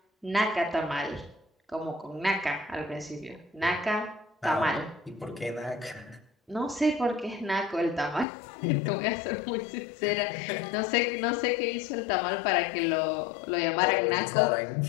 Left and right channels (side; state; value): right; drops out; at 8.2 s